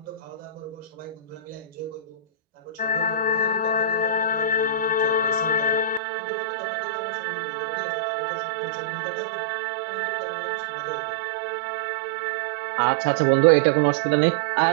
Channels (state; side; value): drops out; left; at 6.0 s